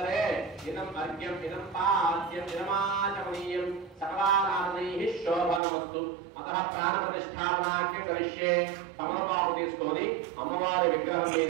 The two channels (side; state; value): left; drops out; at 5.6 s